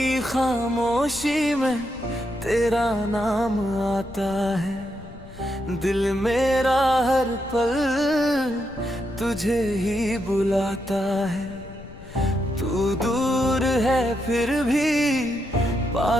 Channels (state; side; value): noise; left; rumble, 18 dB below the sound